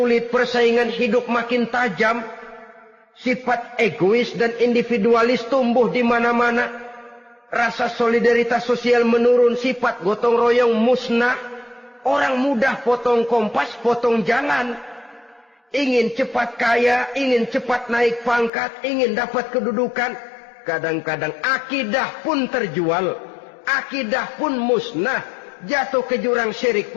persaingan hidup makin tajam, sifat egois dan individualis tumbuh di mana-mana, rasa solidaritas sosial menurun, sifat gotong royong musnah, orang mudah potong kompas, potong jalan, ingin cepat kaya, ingin cepat naik pangkat, ingin dapat kedudukan. Kadang-kadang akidah pun terjual, akidah pun musnah, jatuh ke jurang syirik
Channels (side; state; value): right; drops out; at 18.5 s